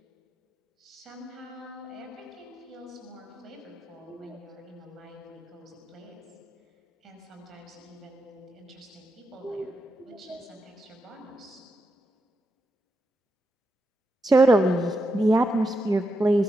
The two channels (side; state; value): both; normal; correlation 0.85